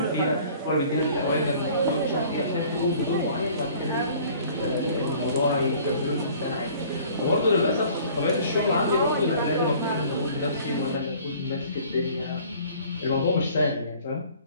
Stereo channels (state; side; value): inverted; both; correlation -0.51